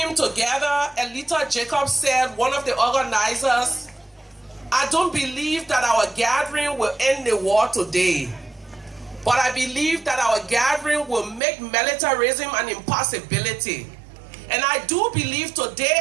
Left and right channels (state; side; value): drops out; left; at 11.4 s